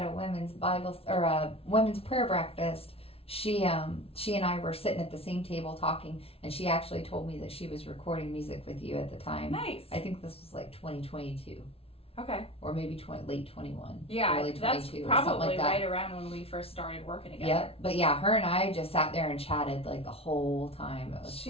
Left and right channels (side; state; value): right; late; 0.28 ms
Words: a women's Bible or a women's prayer breakfast. She and I were sitting at the same table talking, and she actually told me that she was recording music with you at the time. Nice. I think this was like 2022. Okay. Or maybe late 21. Yeah, early 22 that's or something probably like that. right around when we first started working together. Yep. But yeah, her and I just sat there and chatted like the whole time. It was